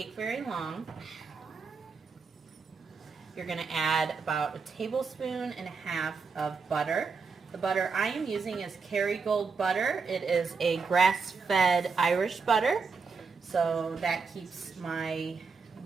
very long, you're going to add about 1.5 tablespoons of butter. The butter I am using is Kerrygold butter. It is a grass-fed Irish butter, so that keeps my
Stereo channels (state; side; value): quieter; left; 5.0 dB